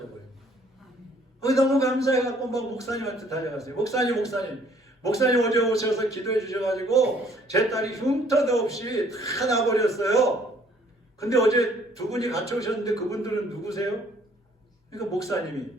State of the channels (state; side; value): normal; both; correlation 0.61